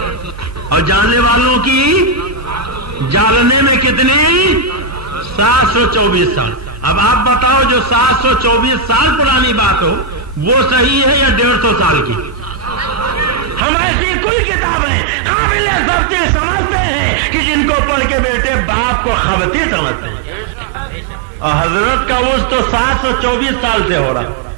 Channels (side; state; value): left; drops out; at 13.6 s